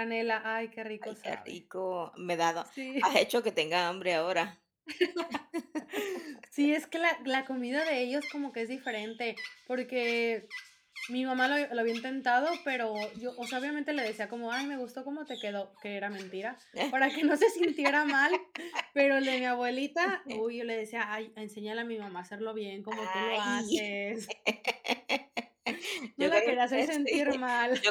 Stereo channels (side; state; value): both; identical; correlation 1.00